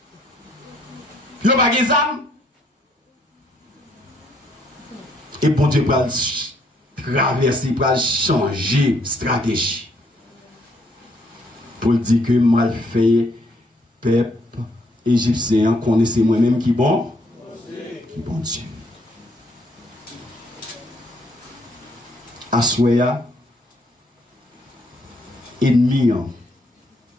Ils n'ont pas des âmes. Et bon Dieu va traverser, va changer stratégie. Pour dire que mal fait, peuple égyptien, connaissez moi-même qui bon? Qui bon Dieu. Assoya, ennemi,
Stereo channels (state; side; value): normal; both; correlation 0.69